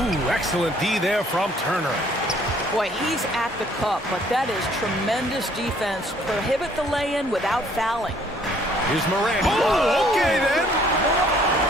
excellent D there from Turner. Boy, he's at the cup, but that is tremendous defense. Prohibit the lay-in without fouling. Here's Morant. Oh, okay then.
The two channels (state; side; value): normal; both; correlation 0.61